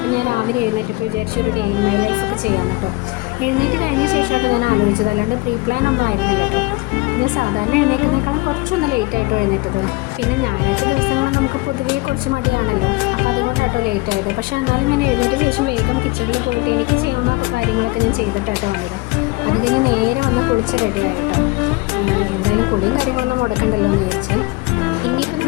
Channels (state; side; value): quieter; right; 23.4 dB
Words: ഞാൻ രാവിലെ എഴുന്നേറ്റപ്പോൾ വിചാരിച്ചു ഒരു ഡേ ഇൻ മൈ ലൈഫൊക്കെ ചെയ്യാമെന്ന് കേട്ടോ. എഴുന്നേറ്റ് കഴിഞ്ഞ ശേഷമായിട്ട് ഞാൻ ആലോചിച്ചത്, അല്ലാണ്ട് പ്രീ പ്ലാൻ ഒന്നും ആയിരുന്നില്ല കേട്ടോ. ഞാൻ സാധാരണ എഴുന്നേൽക്കുന്നേക്കാളും കുറച്ചൊന്ന് ലേറ്റായിട്ടോ എഴുന്നേറ്റത്. പിന്നെ ഞായറാഴ്ച ദിവസങ്ങൾ നമുക്ക് പൊതുവേ കുറച്ച് മടിയാണല്ലോ, അപ്പോൾ അതുകൊണ്ടാട്ടോ ലേറ്റ് ആയത്. പക്ഷേ എന്നാലും ഞാൻ എഴുന്നേറ്റ ശേഷം വേഗം കിച്ചണിൽ പോയിട്ട് എനിക്ക് ചെയ്യാവുന്ന കാര്യങ്ങളൊക്കെ ഞാൻ ചെയ്തിട്ടാട്ടോ വന്നത്. അത് കഴിഞ്ഞ് നേരെ വന്ന് കുളിച്ച് റെഡി ആയിട്ടോ. എന്തായാലും കുളിയും കാര്യങ്ങളൊന്നും മുടക്കണ്ടല്ലോ എന്ന് വിചാരിച്ച്. ഇനിയിപ്പോൾ